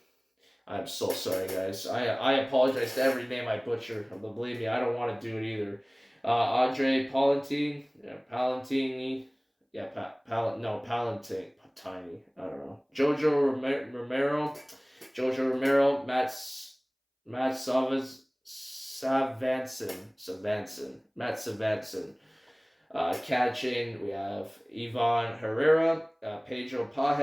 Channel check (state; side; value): identical; both; correlation 1.00